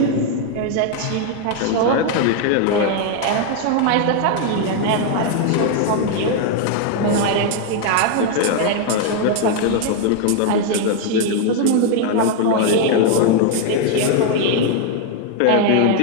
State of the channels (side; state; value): both; different; correlation 0.00